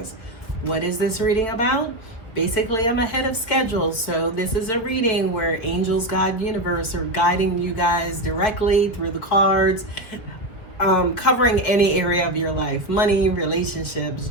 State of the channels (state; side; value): late; right; 4.6 ms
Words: What is this reading about? Basically, I'm ahead of schedule, so this is a reading where angels, God, universe are guiding you guys directly through the cards, covering any area of your life: money, relationships,